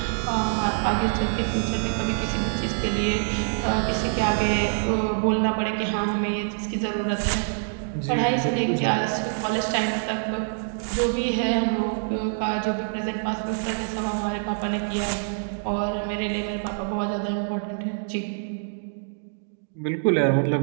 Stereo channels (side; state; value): left; silent; digital silence